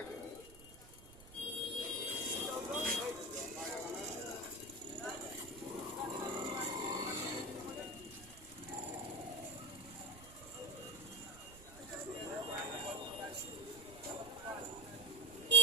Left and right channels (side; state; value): right; noise; rumble, 18 dB below the sound